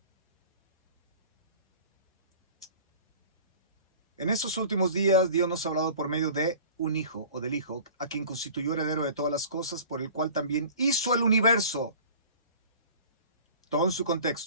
estos últimos días Dios nos ha hablado por medio de un hijo o del hijo, a quien constituyó heredero de todas las cosas, por el cual también hizo el universo. Todo en su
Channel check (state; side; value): inverted; both; correlation -0.43